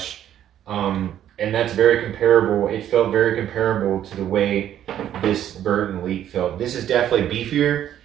And that's very comparable. It felt very comparable to the way this Burton Elite felt. This is definitely beefier.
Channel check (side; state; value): left; quieter; 10.9 dB